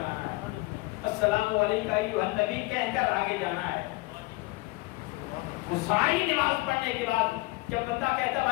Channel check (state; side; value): quieter; right; 22.5 dB